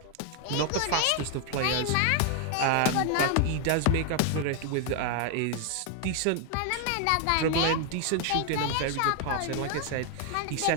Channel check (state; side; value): different; both; correlation 0.01